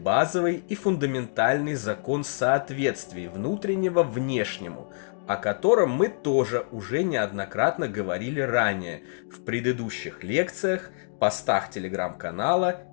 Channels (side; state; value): right; silent; digital silence